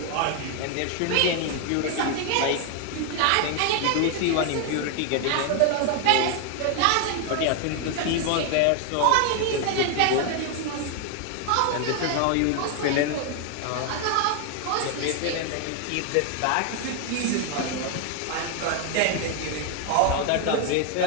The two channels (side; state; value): both; different; correlation 0.01